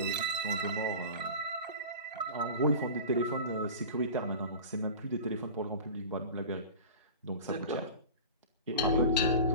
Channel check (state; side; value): inverted; both; correlation -0.34